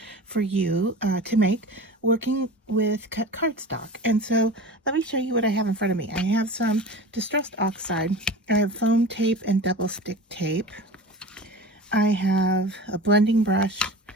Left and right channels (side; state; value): both; normal; correlation 0.34